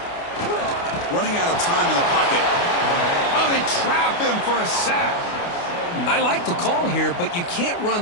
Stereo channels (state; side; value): late; right; 29 ms